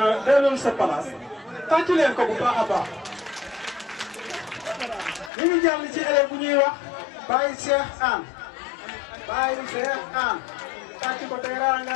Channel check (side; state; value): right; drops out; at 5.3 s